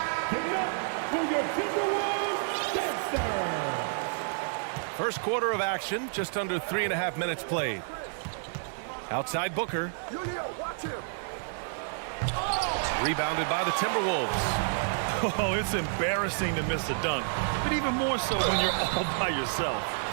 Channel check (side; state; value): left; silent; 58 dB below the other